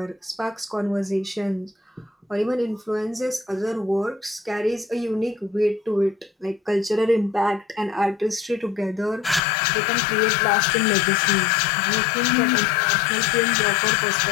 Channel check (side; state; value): right; drops out; at 9.4 s